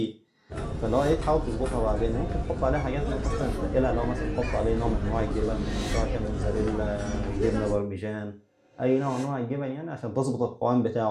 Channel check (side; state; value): both; identical; correlation 1.00